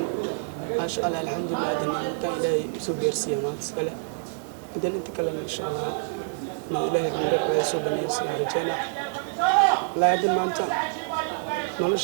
ما شاء الله الحمد لله دنا أنت إلى سوبر سيامات سكله دنا أنت كلنا إن شاء الله إنه إلهي عندك سوبر نيسي رجعنا لا دنا ما أنت نولش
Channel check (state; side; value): silent; left; digital silence